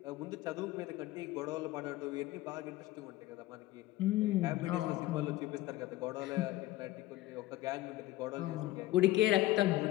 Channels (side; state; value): right; quieter; 16.7 dB